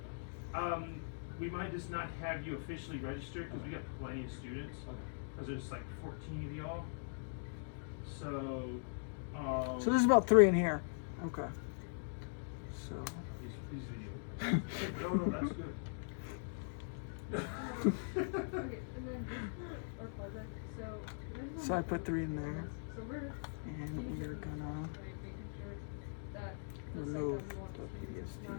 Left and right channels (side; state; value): right; silent; digital silence